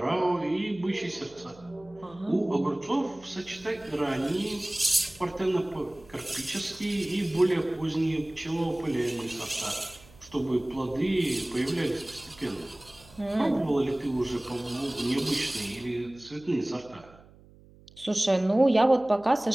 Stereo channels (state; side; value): noise; right; hum, 24 dB below the sound